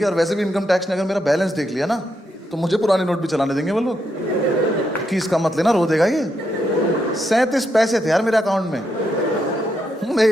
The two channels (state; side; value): normal; both; correlation 0.80